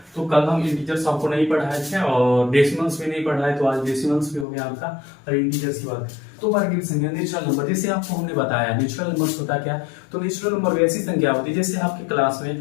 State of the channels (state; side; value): drops out; right; at 4.5 s